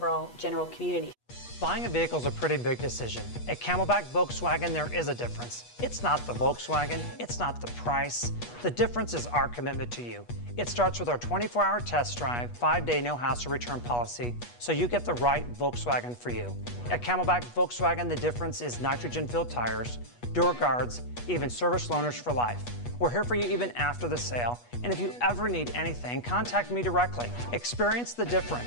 general community. Buying a vehicle is a pretty big decision. At Camelback Volkswagen, there is a difference. It's not the Volkswagen, it's not the price. The difference is our commitment to you. It starts with our 24-hour test drive, 5-day no-hassle return policy, so you get the right Volkswagen for you. At Camelback Volkswagen, the difference is nitrogen-filled tires, door guards, even service loaners for life. We're here for you even after the sale, and if you ever need anything, contact me directly. Experience the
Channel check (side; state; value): right; late; 8.3 ms